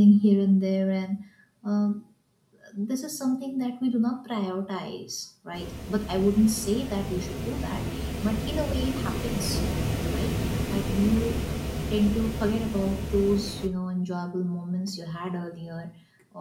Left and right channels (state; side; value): identical; both; correlation 1.00